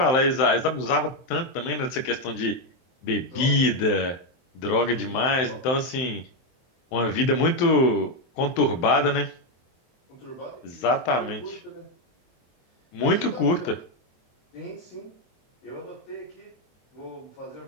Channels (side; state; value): right; late; 23 ms